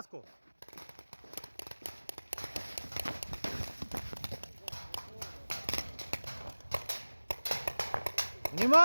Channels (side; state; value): both; inverted; correlation -1.00